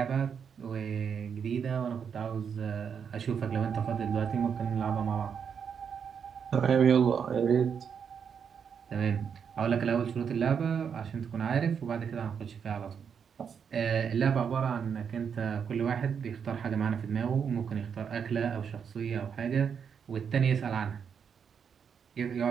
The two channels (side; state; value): left; quieter; 7.1 dB